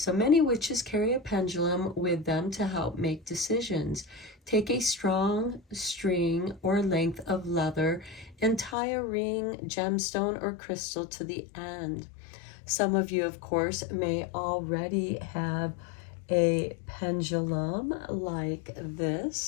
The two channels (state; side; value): drops out; right; at 8.8 s